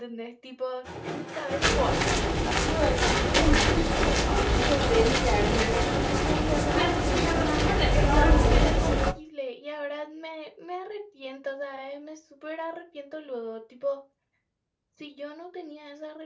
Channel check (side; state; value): both; identical; correlation 1.00